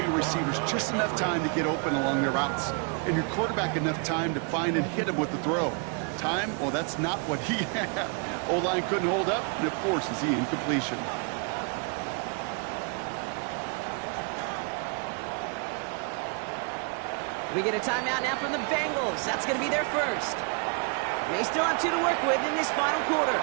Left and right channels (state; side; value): quieter; left; 38.4 dB